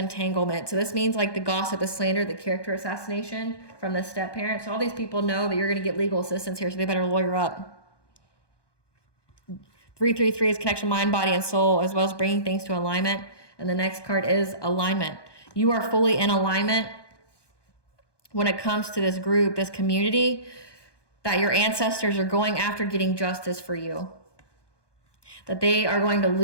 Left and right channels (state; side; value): late; right; 1.2 ms